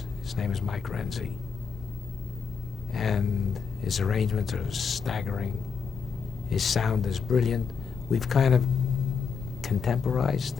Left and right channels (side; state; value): right; quieter; 5.8 dB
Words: His name is Mike Renzi. And his arrangements are staggering. His sound is brilliant. We've kind of